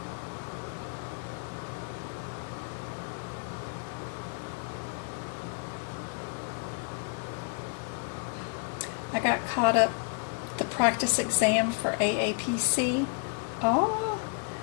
I got caught up the practice exam for AAPC. Oh,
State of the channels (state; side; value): quieter; right; 38.1 dB